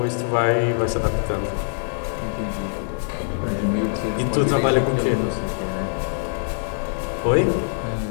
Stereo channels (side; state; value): right; silent; 63 dB below the other